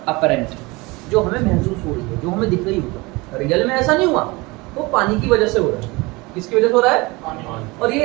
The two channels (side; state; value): left; quieter; 24.0 dB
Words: अपरेंट, जो हमें महसूस हो रही है, जो हमें दिख रही होगा। रियल में ऐसा नहीं हुआ, वो पानी की वजह से हो रहा है। किसकी वजह से हो रहा है? पानी। और